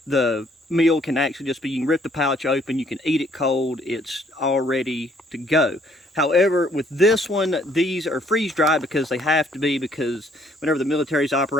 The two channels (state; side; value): normal; both; correlation 0.64